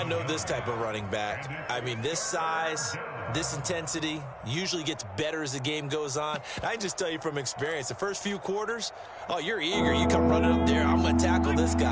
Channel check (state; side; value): identical; both; correlation 1.00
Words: know this type of running back. I mean, this size, this intensity usually gets better as the game goes on. I can just tell you from experience, the first few quarters, oh, you're eager. You come running up there, I'm going to tackle this